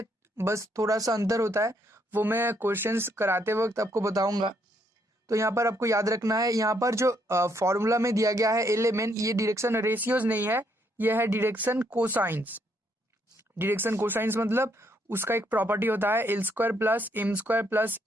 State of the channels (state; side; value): normal; both; correlation 0.72